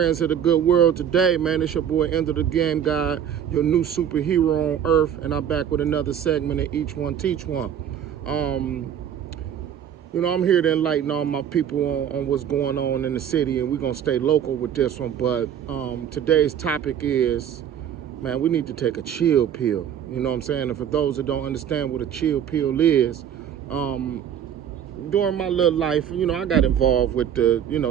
of the good world today, man? It's your boy, End of the Game Guy, your new superhero on earth, and I'm back with another segment of Each One Teach One. Um, I'm here to enlighten all my people on what's going on in the city, and we're gonna stay local with this one. But today's topic is, man, we need to take a chill pill. You know what I'm saying? And for those that don't understand what a chill pill is, during my little life, I got involved with the,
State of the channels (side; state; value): left; quieter; 9.2 dB